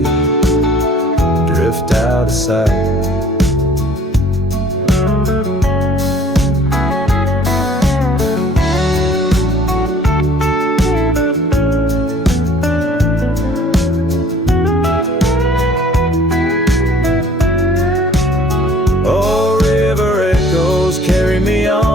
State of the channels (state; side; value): normal; both; correlation 0.54